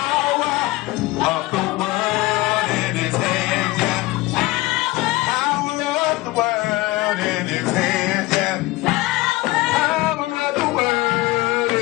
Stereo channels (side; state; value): right; quieter; 19.9 dB